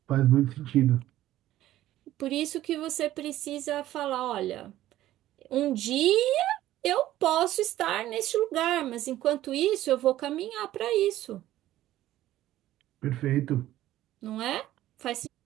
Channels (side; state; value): left; quieter; 14.1 dB